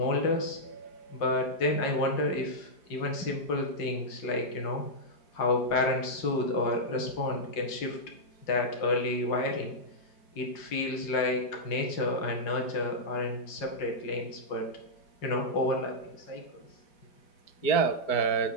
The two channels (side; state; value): right; late; 5.0 ms